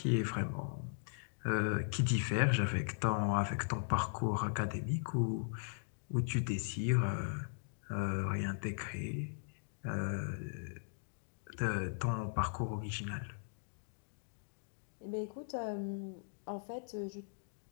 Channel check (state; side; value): silent; right; digital silence